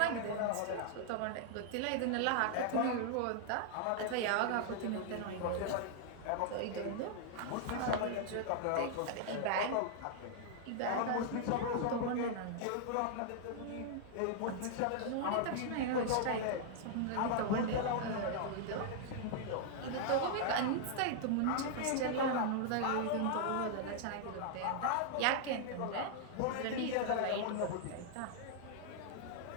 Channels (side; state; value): both; different; correlation -0.01